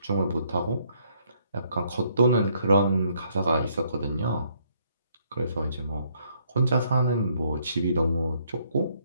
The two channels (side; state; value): both; inverted; correlation -0.69